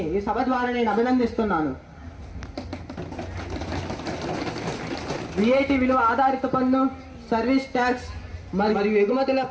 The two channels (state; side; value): identical; both; correlation 1.00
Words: ఈ సభ ద్వారా నేను అభినందిస్తున్నాను. VAT విలువ ఆధారిత పన్ను, సర్వీస్ ట్యాక్స్ మరియు